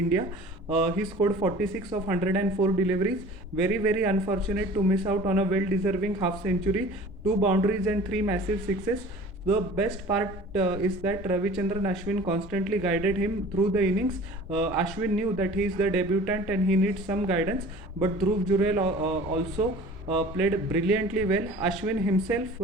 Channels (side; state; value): both; normal; correlation 0.44